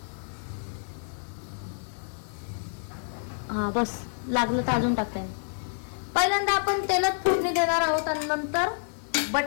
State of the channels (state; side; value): silent; right; 59 dB below the other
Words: हा बस, लागलं तर अजून टाकता येईल. पहिल्यांदा आपण तेलात फोडणी देणार आहोत आणि नंतर